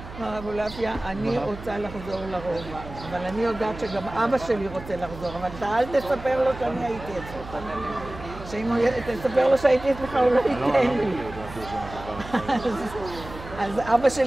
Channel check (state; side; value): noise; right; hum, 13 dB below the sound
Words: מר אבולעפיה, אני רוצה לחזור לרובע, אבל אני יודעת שגם אבא שלי רוצה לחזור, אבל אתה אל תספר לו שאני הייתי אצלך. שאם תספר לו שהייתי אצלך, הוא לא ייתן לי. אז אבא